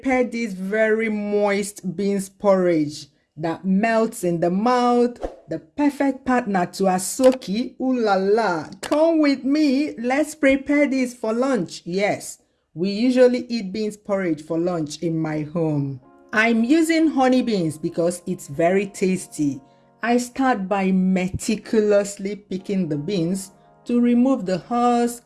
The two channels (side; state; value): both; identical; correlation 1.00